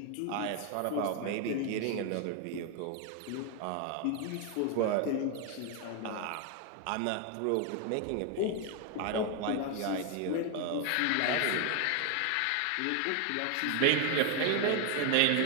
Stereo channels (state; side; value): different; both; correlation 0.01